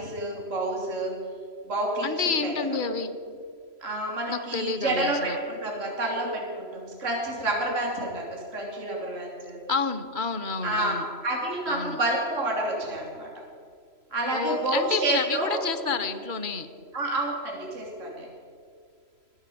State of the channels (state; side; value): late; left; 3.0 ms